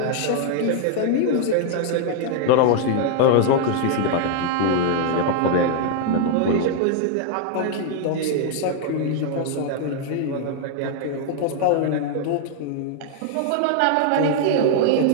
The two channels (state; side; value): different; both; correlation -0.01